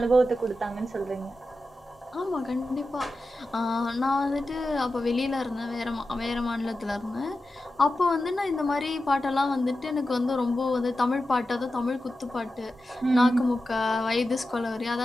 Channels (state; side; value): normal; both; correlation 0.92